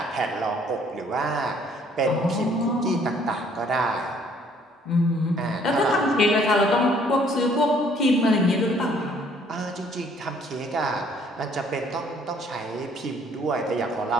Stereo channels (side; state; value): both; normal; correlation 0.61